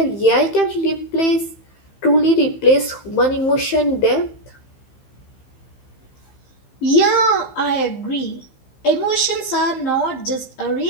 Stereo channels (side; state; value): right; late; 15 ms